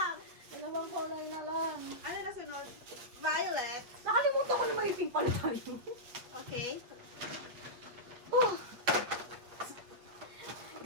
Dalawang kulay na lang. Ano na sunod? Violet. Nakalimutan ko na maiting pala tayo. Okay. Oh,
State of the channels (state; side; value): late; left; 8.1 ms